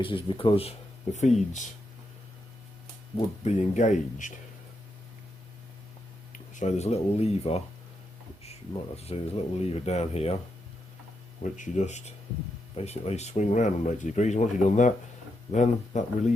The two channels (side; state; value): both; normal; correlation 0.83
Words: because the feeds would be engaged. So there's a little lever, which you might have to see, there's a little lever down here, which you just basically swing around on 90 degrees. Once you've done that, then that